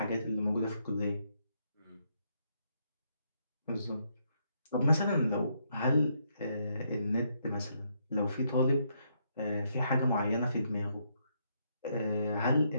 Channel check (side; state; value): both; inverted; correlation -0.76